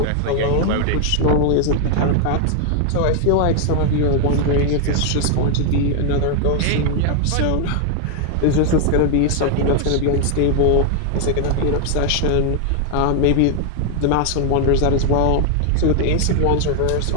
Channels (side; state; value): both; different; correlation 0.00